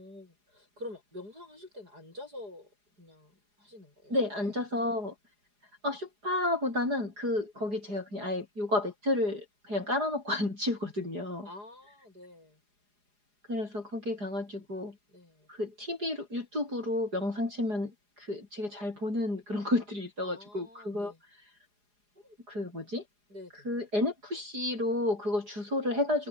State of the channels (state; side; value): late; left; 4.8 ms